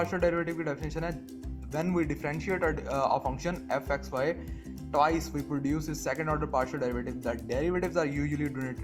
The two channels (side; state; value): both; identical; correlation 1.00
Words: डेरिवेटिव की डेफिनेशन है, when we differentiate a function f(x, y) twice we produce a second order partial derivative. The derivatives are usually